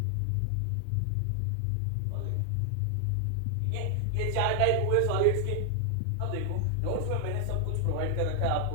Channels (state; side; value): different; both; correlation 0.00